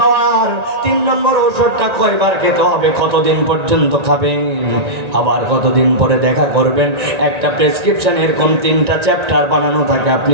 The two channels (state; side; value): late; left; 1.9 ms